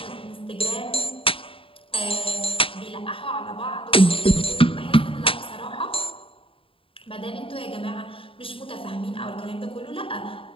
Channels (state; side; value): late; right; 0.26 ms